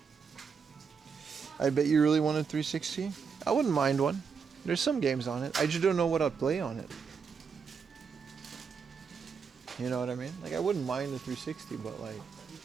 I bet you really wanted 360. I wouldn't mind one. There's some games on it. I just don't know what I'd play on it. You know what I mean? Like, I wouldn't mind the 360, but like,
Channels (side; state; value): left; quieter; 6.0 dB